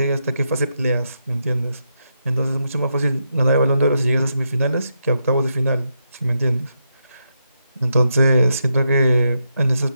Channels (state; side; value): inverted; both; correlation -0.82